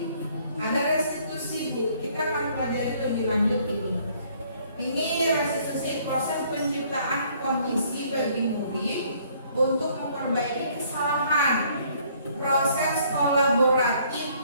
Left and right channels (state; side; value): inverted; both; correlation -0.62